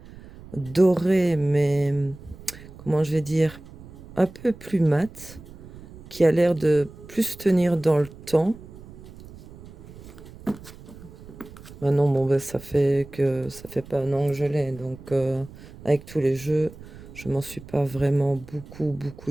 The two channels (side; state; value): right; noise; rumble, 18 dB below the sound